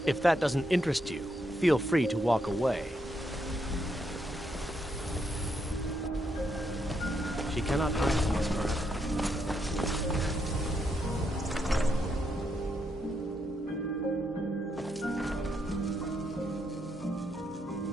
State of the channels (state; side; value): normal; both; correlation 0.79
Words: If that doesn't interest you, feel free to walk away. She cannot hide from us forever.